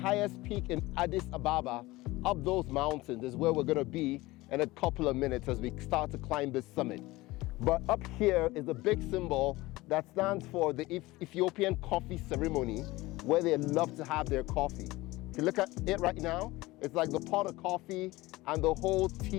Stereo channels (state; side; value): quieter; right; 19.8 dB